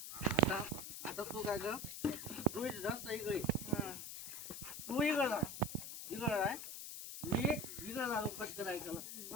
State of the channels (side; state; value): left; noise; hiss, 8 dB below the sound